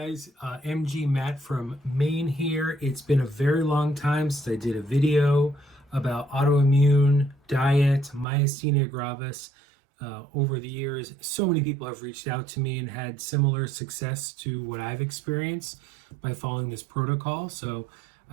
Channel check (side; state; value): left; drops out; at 8.2 s